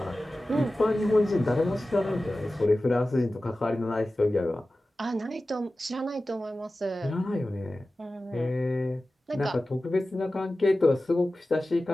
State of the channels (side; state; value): both; normal; correlation 0.95